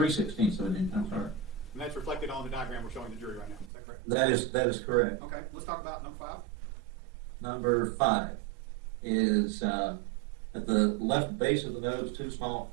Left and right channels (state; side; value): drops out; left; at 3.7 s